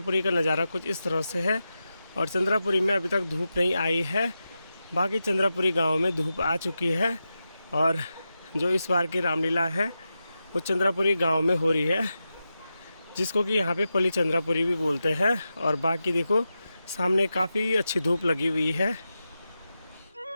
का नज़ारा कुछ इस तरह से है। और चंद्रापुरी में अभी तक धूप नहीं आई है, बाकी चंद्रापुरी गांव में धूप आ चुकी है। और जो इस बार की रामलीला है वो चंद्रापुरी गांव में हो रही है, जिसको कि यहाँ पे पली चंद्रापुरी भी बोलते हैं। और बाकी देखो सामने काफ़ी अच्छी धूप लगी हुई है।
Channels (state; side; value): inverted; both; correlation -0.90